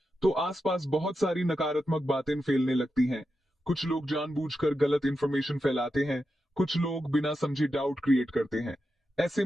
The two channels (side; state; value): both; normal; correlation 0.88